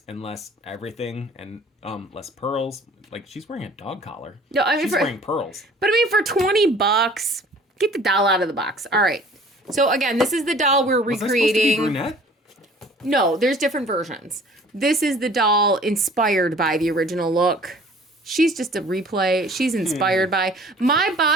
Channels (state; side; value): normal; both; correlation 0.50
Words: and less everything and less pearls. Like she's wearing a dog collar. No, I mean she's wearing pearls. But I mean, for $20, get the doll out of the box. All right. So again, this is the doll we're recreating. Was I supposed to be brunette? No, there's different versions. This is the doll inspired by the original look. She's just a replay. She's inspired by. My